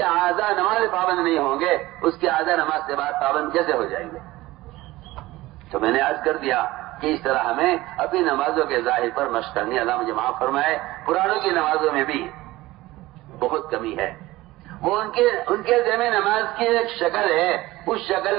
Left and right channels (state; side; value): quieter; left; 18.4 dB